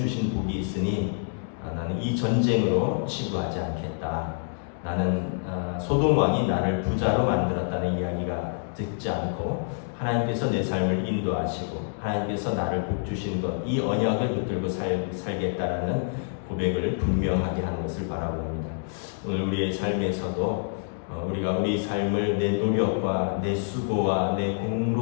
복이 있으니 나는 이 전쟁으로 치부하지 않겠다. 나는 소돔 왕이 나를 부자로 만들었다는 이야기가 듣지 않고 하나님께서 내 삶을 인도하시고 하나님께서 나를 복 주신 것, 이 언약을 붙들고 살겠다라는 고백을 분명하게 하는 것을 바라봅니다. 오늘 우리의 삶에서도 우리가 우리 삶을 내 노력과 내 수고와 내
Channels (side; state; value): right; silent; digital silence